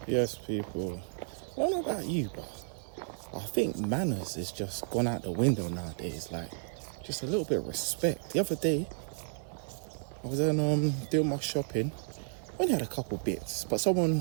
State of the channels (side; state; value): left; silent; digital silence